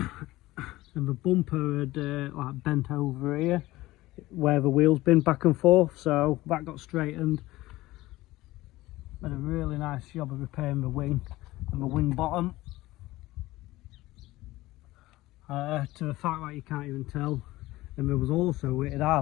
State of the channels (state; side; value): quieter; right; 18.0 dB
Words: the bumper had like bent over here where the wheel's been back and forth, so that got straightened. Made a really nice job of repairing the wing and the wing bottom. To the fact that you can't even tell. And there was also, it